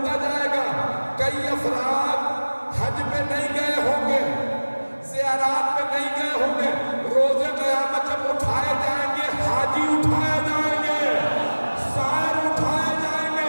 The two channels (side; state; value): both; inverted; correlation -1.00